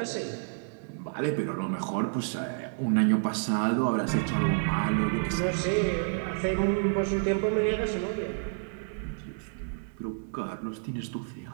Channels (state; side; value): silent; left; digital silence